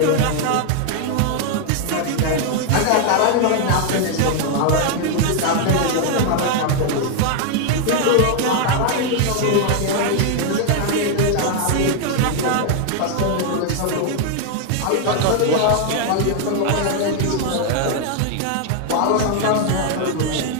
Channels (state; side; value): different; both; correlation 0.00